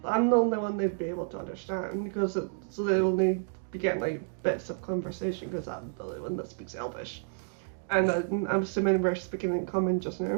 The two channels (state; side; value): silent; left; 58 dB below the other